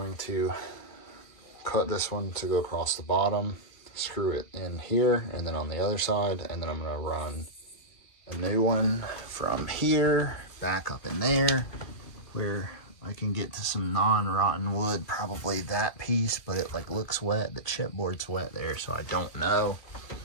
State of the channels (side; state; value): right; late; 2.4 ms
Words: to cut this one to go across the bottom, screw it in here and then on the other side, and then I'm gonna run a new one from here back up in there where I can get to some non-rotten wood, probably that piece, but it like looks wet. The chipboard's wet there, so I don't know.